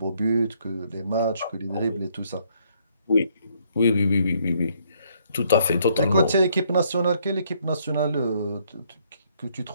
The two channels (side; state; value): both; inverted; correlation -0.69